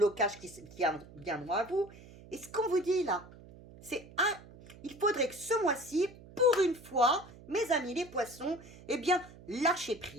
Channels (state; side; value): noise; right; hum, 20 dB below the sound